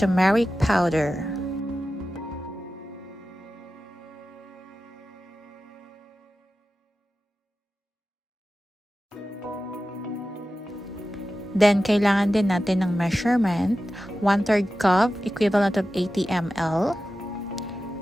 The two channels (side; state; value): both; normal; correlation 0.93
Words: powder. Then, kailangan din natin ng measurement, 1/3 cup, equivalent of 80 ml,